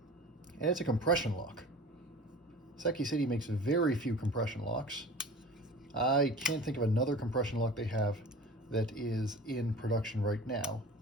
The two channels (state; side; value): normal; both; correlation 0.40